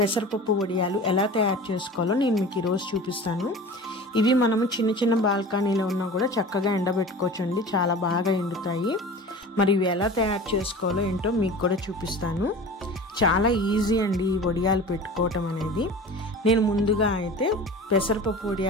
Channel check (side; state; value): both; normal; correlation 0.37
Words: వడియాలు ఎలా తయారు చేసుకోవాలో నేను మీకు ఈరోజు చూపిస్తాను. ఇవి మనము చిన్న చిన్న బాల్కనీలో ఉన్నా కూడా చక్కగా ఎండబెట్టుకోవచ్చు అండి, చాలా బాగా ఎండుతాయి. మరి ఇవి ఎలా తయారు చేసుకోవాలో ఏంటో మీకు కూడా చూపిస్తాను. చాలా ఈజీ అండి ఈ వడియాలు పెట్టుకోవటం అనేది. నేను ముందుగా అయితే పెసరపప్పు